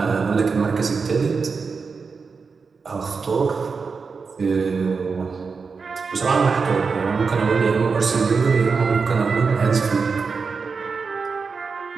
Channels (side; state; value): left; quieter; 5.0 dB